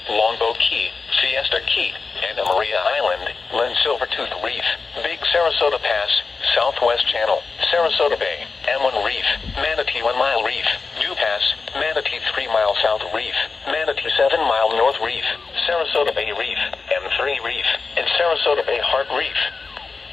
Longboat Key, Fiesta Key, Anna Maria Island, Lynn Silvertooth Reef, Big Sarasota Pass, Southwest Channel, Sarasota Bay, M1 Reef, Manatee 1 Mile Reef, New Pass, Manatee 3 Mile South Reef, Manatee 7 Mile North Reef, Sarasota Bay Reef, M3 Reef, and Sarasota Bay Heart Reef.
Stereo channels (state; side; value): quieter; right; 4.5 dB